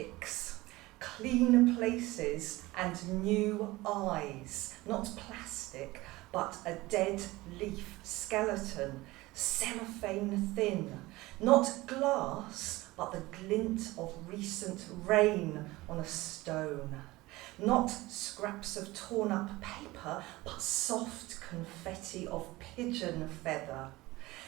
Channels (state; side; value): quieter; left; 19.9 dB